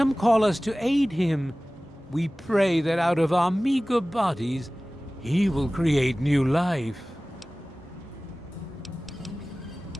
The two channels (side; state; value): both; normal; correlation 0.98